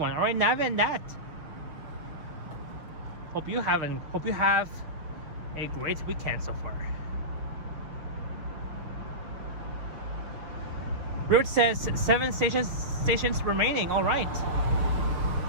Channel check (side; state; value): left; late; 6.4 ms